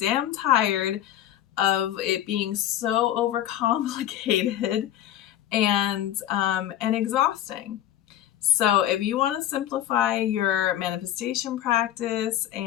tired of it being so overcomplicated and exhausting. So if you want to simplify your manifestation practice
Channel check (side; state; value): right; quieter; 12.2 dB